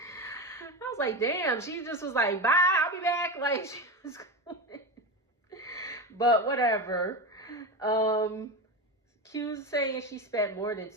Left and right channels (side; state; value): both; normal; correlation 0.20